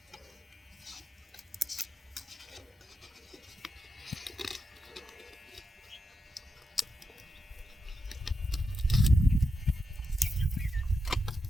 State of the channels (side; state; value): both; normal; correlation 0.86